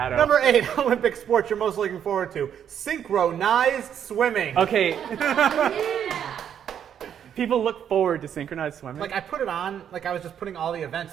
Number 8 Olympic sport you're most looking forward to: synchronized swimming. Okay. People look forward to synchronized swimming. Like I put it on, like I was just putting all the events.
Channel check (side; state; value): left; quieter; 9.0 dB